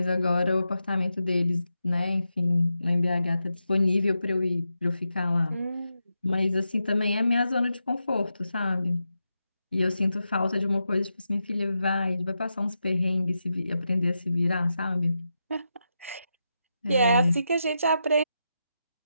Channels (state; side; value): inverted; both; correlation -0.87